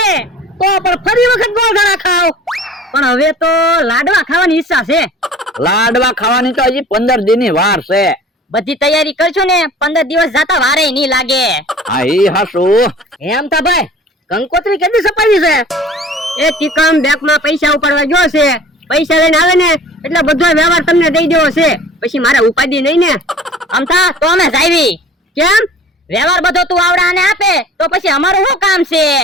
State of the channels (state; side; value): normal; both; correlation 0.45